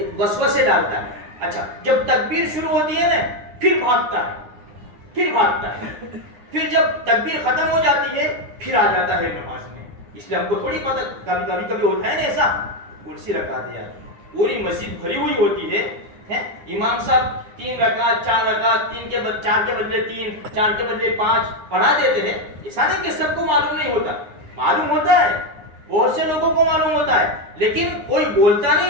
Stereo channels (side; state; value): left; late; 9.6 ms